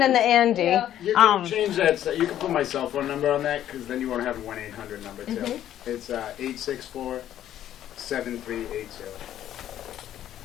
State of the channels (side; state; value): right; quieter; 11.6 dB